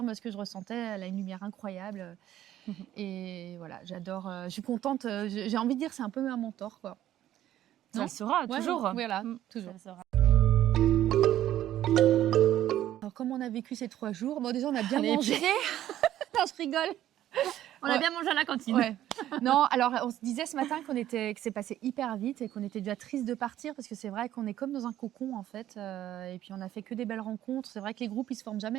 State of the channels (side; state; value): left; quieter; 12.6 dB